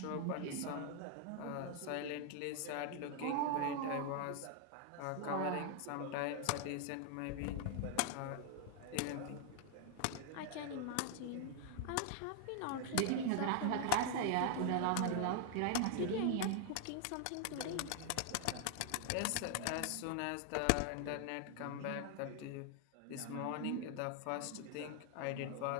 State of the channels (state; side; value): different; both; correlation 0.00